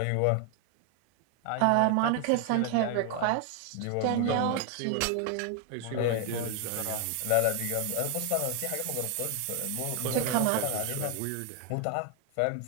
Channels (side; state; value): both; different; correlation 0.00